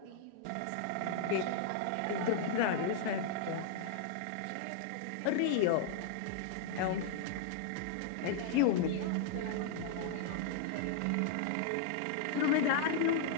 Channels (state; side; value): different; both; correlation -0.01